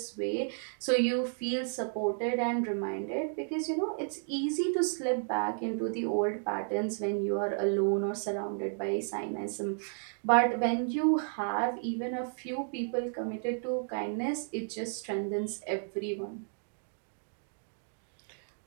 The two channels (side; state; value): left; silent; digital silence